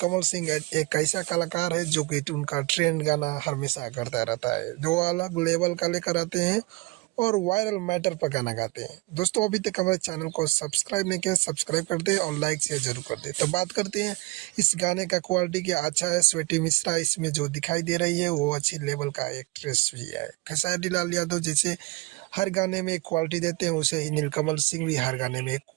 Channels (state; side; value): quieter; left; 23.7 dB